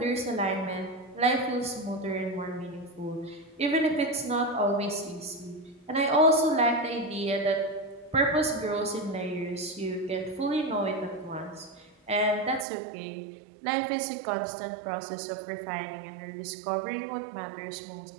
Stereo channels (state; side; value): drops out; left; at 12.7 s